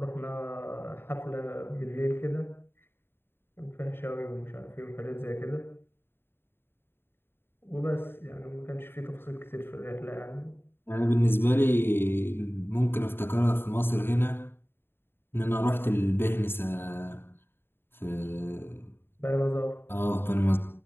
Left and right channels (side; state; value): right; late; 0.11 ms